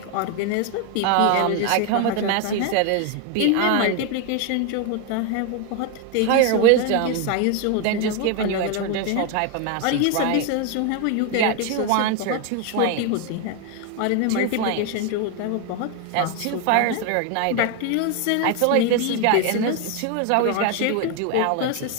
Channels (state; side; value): different; both; correlation 0.01